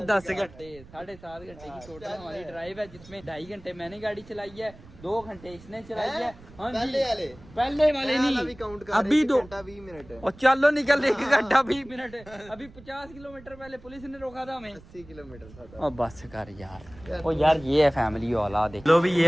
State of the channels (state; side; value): noise; right; rumble, 21 dB below the sound